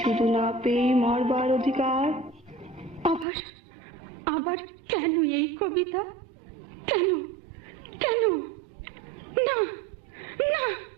শুধু না পেয়ে মরবার অধিকার। আবার আবার কেন এই কবিতা? কেন কেন? না না,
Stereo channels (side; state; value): left; drops out; at 3.2 s